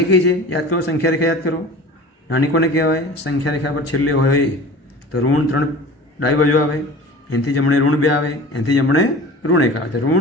કઈ છે યાદ કરો, સંખ્યા રેખા યાદ કરો. નાની કોને કહેવાય? સંખ્યા રેખા પર છેલ્લે હોય તો ઋણ 3 ડાબી બાજુ આવે, એનાથી જમણે ઋણ 2 આવે, એનાથી જમણે ઋણ 1 આવે. તો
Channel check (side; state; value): both; normal; correlation 0.39